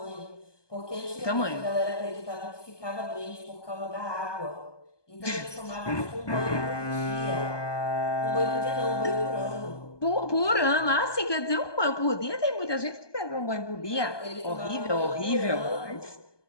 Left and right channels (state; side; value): late; right; 1.2 ms